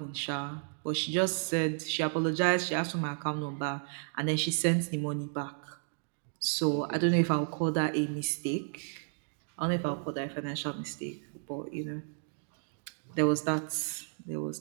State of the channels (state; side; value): silent; left; digital silence